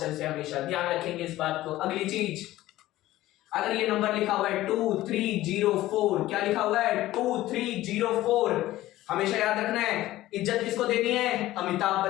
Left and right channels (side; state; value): right; quieter; 15.8 dB